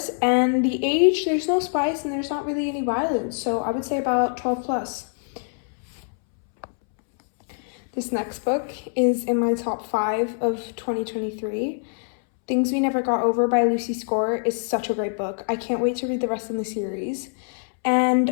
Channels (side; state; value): right; silent; 62 dB below the other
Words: and the age, there's no spice and there's not really any violence, so I would say about 12 plus. This next book is in my top 5 of 2023. Things We Never Got Over by Lucy Score is such a great book. I can't wait to read the rest of the series.